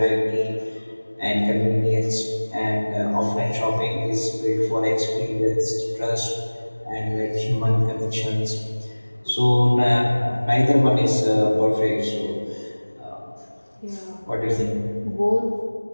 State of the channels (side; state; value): both; inverted; correlation -1.00